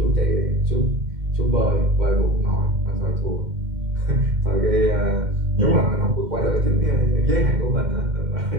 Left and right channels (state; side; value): late; left; 2.1 ms